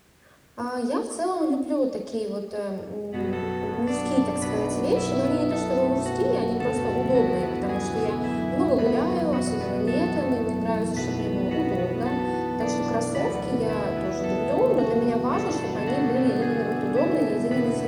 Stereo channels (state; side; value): identical; both; correlation 1.00